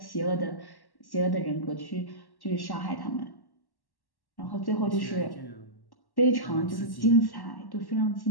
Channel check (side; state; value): right; late; 1.1 ms